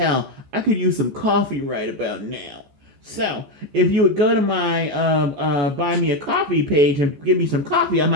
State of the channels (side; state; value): left; late; 14 ms